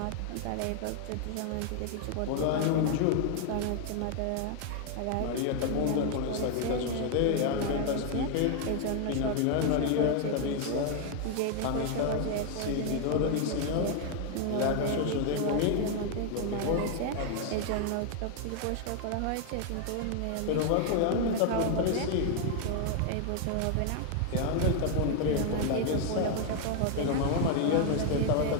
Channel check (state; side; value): different; both; correlation 0.00